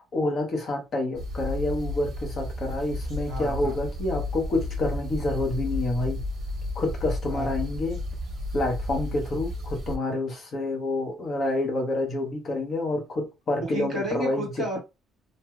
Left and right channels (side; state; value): both; normal; correlation 0.73